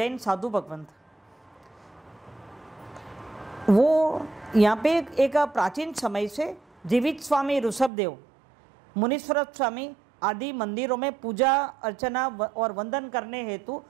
साधु भगवंत, वो यहाँ पे एक प्राचीन समय से जीवित स्वामी ऋषभदेव, मुनीश्वर स्वामी आदि मंदिरों में पूजा अर्चना और वंदन करने हेतु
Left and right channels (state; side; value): drops out; left; at 7.9 s